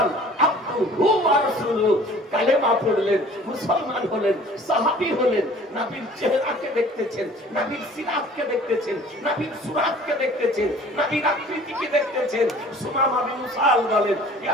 আবদুহু ওয়া রাসূলুহু। কালেমা পড়লেন, মুসলমান হলেন, সাহাবী হলেন। নবীর চেহারাকে দেখতেছেন, নবীর সিরাতকে দেখতেছেন, নবীর সুরাতকে দেখতেছেন, নবীর আকৃতিকে দেখতেছেন। সুমামা বিন উসাল বলেন,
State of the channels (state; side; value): normal; both; correlation 0.49